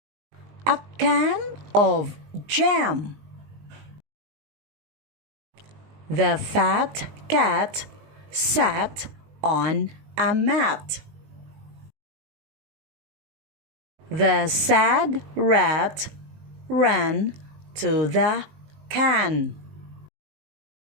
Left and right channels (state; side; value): late; left; 20 ms